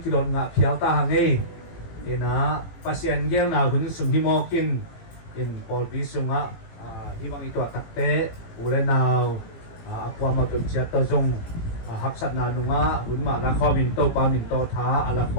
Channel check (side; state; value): right; late; 18 ms